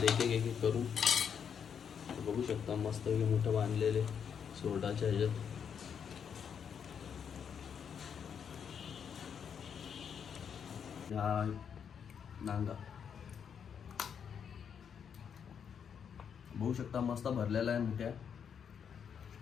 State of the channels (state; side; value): quieter; right; 7.5 dB